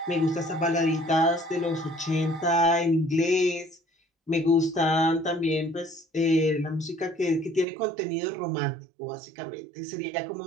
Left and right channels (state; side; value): drops out; left; at 7.7 s